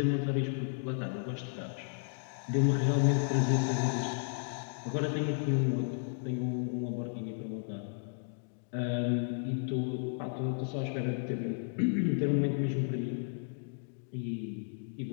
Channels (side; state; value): right; silent; digital silence